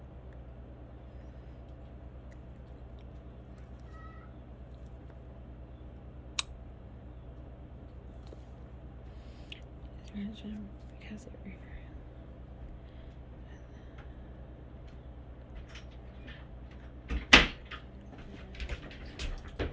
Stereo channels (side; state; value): both; identical; correlation 1.00